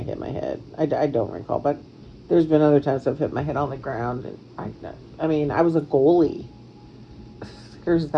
hit my head. I don't recall, but there's been other times I've hit my head on the ground, and I mean, I was a goalie. There's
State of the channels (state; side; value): identical; both; correlation 1.00